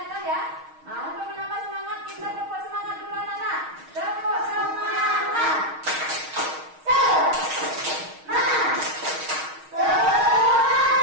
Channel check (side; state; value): left; late; 6.4 ms